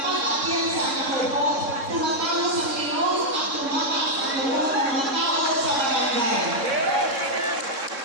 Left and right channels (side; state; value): left; late; 3.7 ms